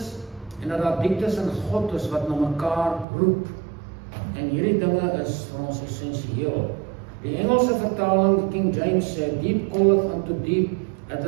en dat daar dieptes in God is wat na mekaar roep. En hierdie dinge is vir ons essensieel. Die Engelse vertaling, King James sê, deep calleth unto deep at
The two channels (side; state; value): left; drops out; at 3.1 s